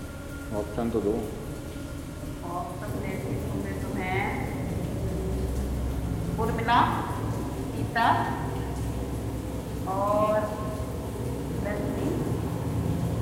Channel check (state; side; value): identical; both; correlation 1.00